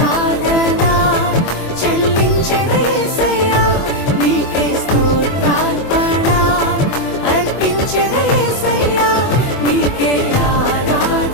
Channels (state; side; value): late; right; 24 ms